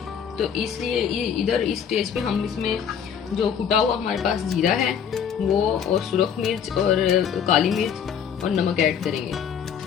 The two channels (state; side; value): quieter; right; 7.8 dB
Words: तो इसलिए इधर इस स्टेज पे हम इसमें जो कुटा हुआ हमारे पास जीरा है वो, और सुरख मिर्च और काली मिर्च और नमक ऐड करेंगे,